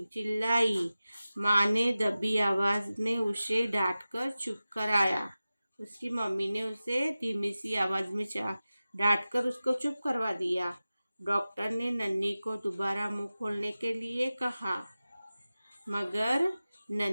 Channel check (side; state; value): both; inverted; correlation -0.95